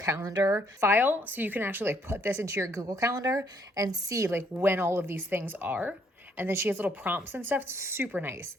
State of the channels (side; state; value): both; normal; correlation 0.68